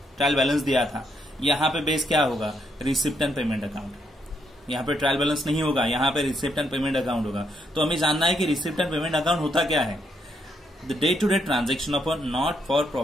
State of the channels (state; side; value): normal; both; correlation 0.76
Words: ट्रायल बैलेंस दिया था। यहाँ पे बेस क्या होगा, रिसिप्ट एंड पेमेंट अकाउंट। यहाँ पे ट्रायल बैलेंस नहीं होगा, यहाँ पे रिसिप्ट एंड पेमेंट अकाउंट होगा। तो हमें जानना है कि रिसिप्ट एंड पेमेंट अकाउंट होता क्या है। The day to day transaction of a not for